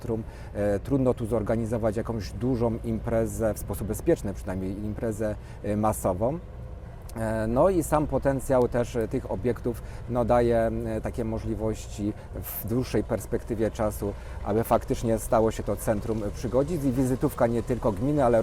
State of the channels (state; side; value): identical; both; correlation 1.00